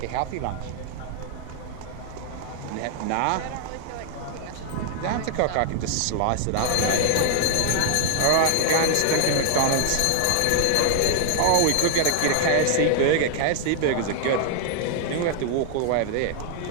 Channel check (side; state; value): both; different; correlation 0.00